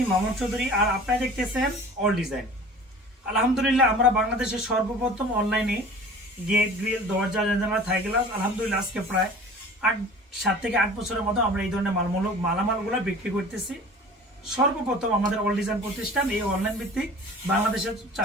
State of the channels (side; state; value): both; normal; correlation 0.43